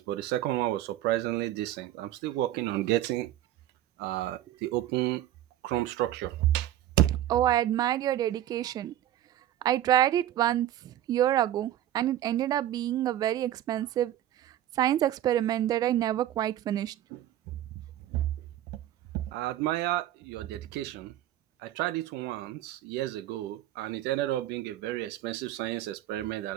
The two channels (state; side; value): quieter; left; 12.8 dB